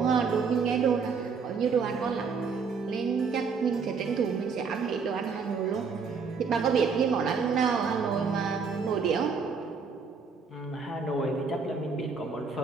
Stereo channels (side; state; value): left; quieter; 5.4 dB